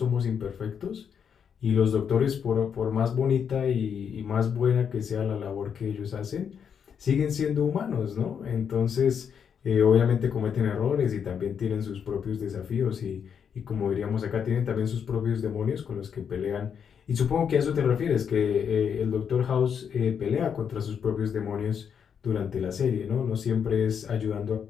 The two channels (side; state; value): right; quieter; 7.4 dB